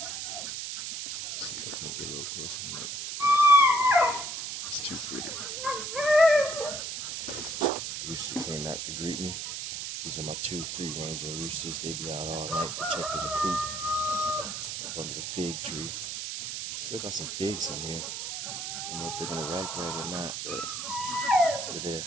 Let's see if I can get a little closer. It's too pretty. Rooster came out to greet me. These are my two free-ranging roosters. They be out all night protecting the coop up under the fig tree. Still got some figs in here. I don't know if they're gonna ripe right or not, but they're there.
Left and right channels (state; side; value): noise; right; hiss, 5 dB below the sound